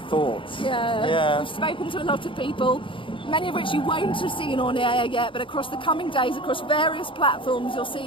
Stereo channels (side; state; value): right; late; 0.25 ms